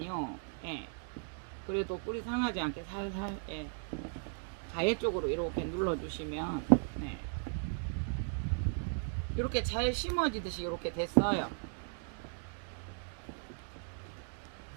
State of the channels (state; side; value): silent; left; 53 dB below the other